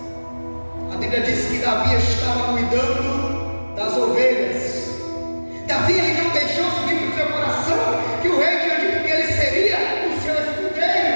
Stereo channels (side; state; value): both; inverted; correlation -1.00